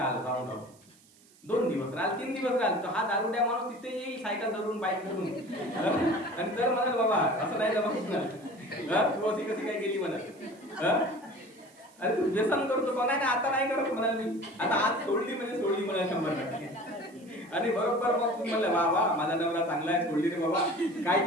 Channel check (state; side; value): noise; right; hiss, 28 dB below the sound